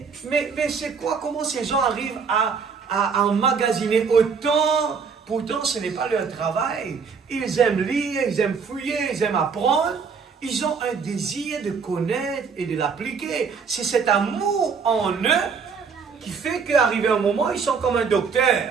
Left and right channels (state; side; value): quieter; left; 5.7 dB